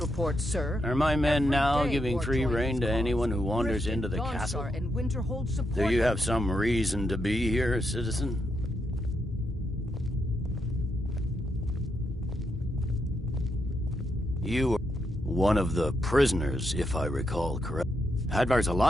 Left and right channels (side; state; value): both; normal; correlation 0.81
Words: sir. Are my men Every now day giving war free joins rein to cause. anyone who wanders Riften, into the Dawnstar, castle? and Winterhold support Do you them. have some reason to be here, citizen? You are one of the prisoners, if I recall correct. Hadvar's